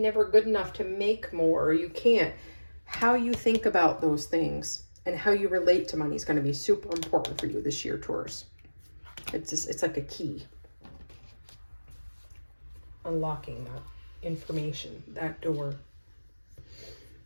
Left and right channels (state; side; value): inverted; both; correlation -1.00